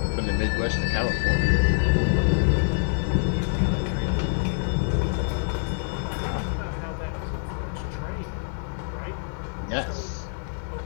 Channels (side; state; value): right; silent; 61 dB below the other